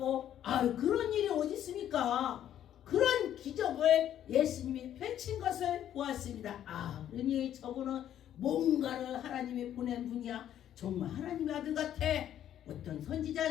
그런 일이 어디 있습니까? 그런 기적을 예수님이 펼친 것을 보았습니다. 그러니 저분은 뭔가를 하나님이 보낸 분이야. 정말 하나님의 아들 같아. 어떤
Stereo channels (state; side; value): quieter; right; 10.9 dB